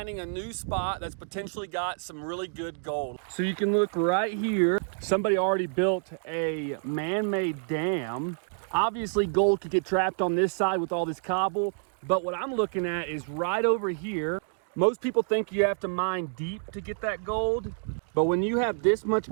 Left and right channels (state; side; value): silent; left; digital silence